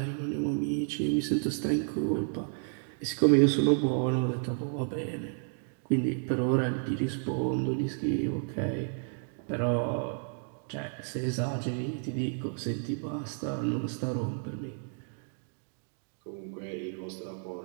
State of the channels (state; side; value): silent; left; 57 dB below the other